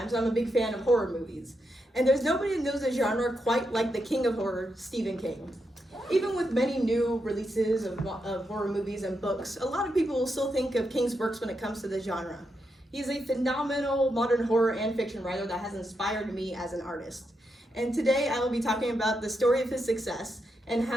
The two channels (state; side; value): normal; both; correlation 0.84